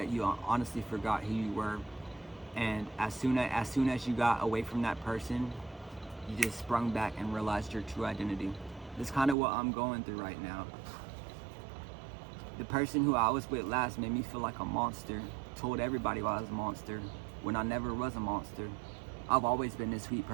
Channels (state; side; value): drops out; left; at 9.3 s